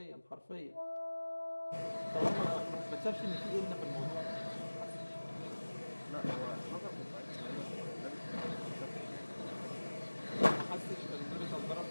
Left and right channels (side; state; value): both; inverted; correlation -1.00